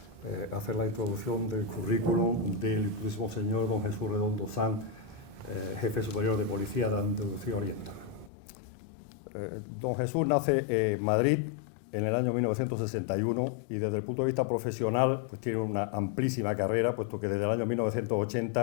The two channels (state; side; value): drops out; right; at 8.3 s